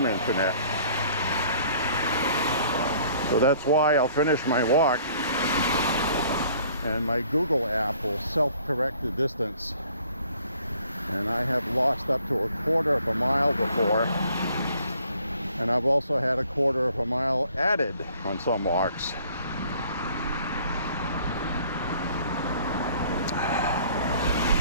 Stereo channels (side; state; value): both; inverted; correlation -0.57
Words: internet. So that's why I'll finish my walk and my Google app will self-correct the distance. And I have lost up to 1/4 of a mile before, and I've also had 1/4 of a mile added on some walks.